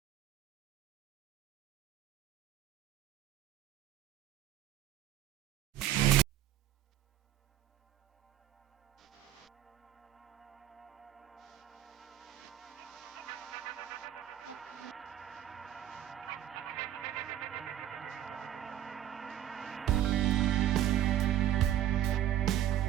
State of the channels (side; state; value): left; quieter; 11.7 dB